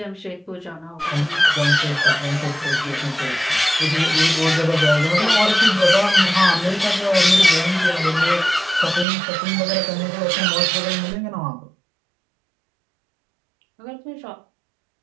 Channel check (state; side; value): drops out; left; at 9.1 s